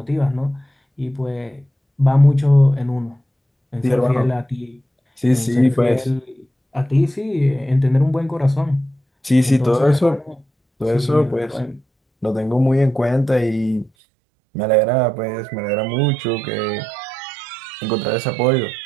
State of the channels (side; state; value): left; drops out; at 13.9 s